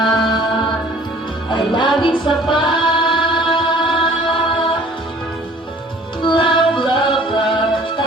ay laging sapat. Love, love, love,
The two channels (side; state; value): both; normal; correlation 0.52